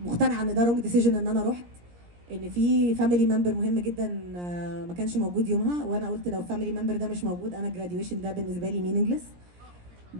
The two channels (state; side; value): late; left; 17 ms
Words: مقتنعه ان ده رونج ديسيجن ان انا رحت، ان في فاميلي ممبر مهم جدا ما كانش موجود يومها، وانا قلت لو فاميلي ممبر ده مش موجود انا الجراديويشن ده بالنسبه لي مينينجلس.